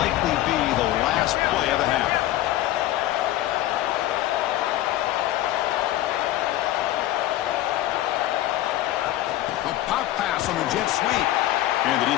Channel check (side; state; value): right; quieter; 14.6 dB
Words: likely be the last play of the half. A pop pass on the jet sweep. And the